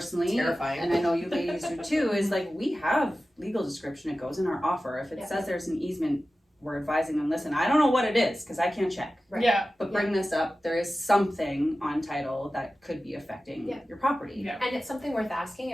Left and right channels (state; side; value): normal; both; correlation 0.95